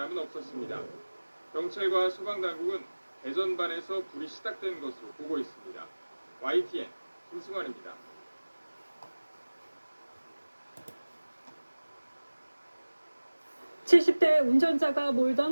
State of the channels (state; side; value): inverted; both; correlation -1.00